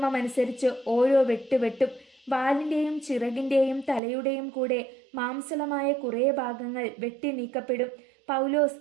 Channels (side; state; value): left; drops out; at 4.0 s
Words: ഓരോ വെട്ടും. വാലിന്റെയും ചിറകിന്റെയും തലയുടെയും കൂടെ മാംസളമായ കുറേ ഭാഗങ്ങൾ വെട്ടി നീക്കപ്പെടും. പൗലോസ്